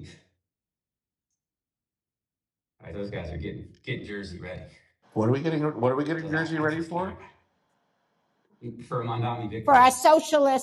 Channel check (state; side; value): identical; both; correlation 1.00